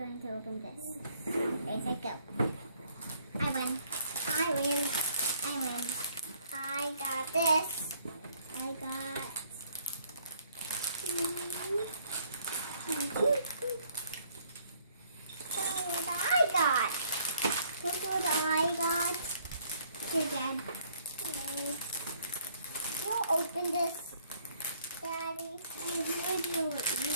to open this. Ready, set, go. I win. I win. I win. I got this. I got... Look what I got. Look what I got. Here, Dad. You'll open this, Daddy. I have no idea what you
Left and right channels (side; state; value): both; inverted; correlation -0.60